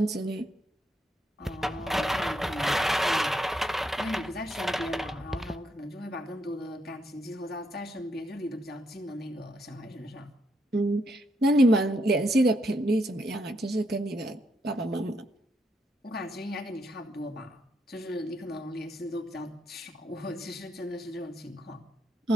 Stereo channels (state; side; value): normal; both; correlation 0.77